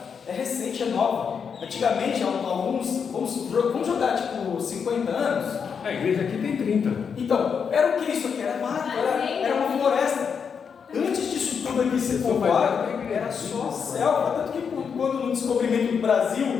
é recente, é nova. Antigamente, alguns, vamos jogar tipo 50 anos. A igreja aqui tem 30. Então, era o que isso aqui? Era mato, era uma floresta. Antes disso tudo aqui ser povoado, era só selva. Tanto que quando no descobrimento do Brasil,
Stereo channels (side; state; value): right; quieter; 6.5 dB